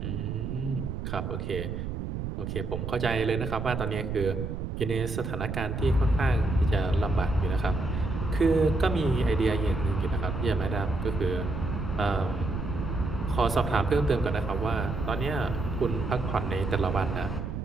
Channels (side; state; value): right; noise; rumble, 4 dB below the sound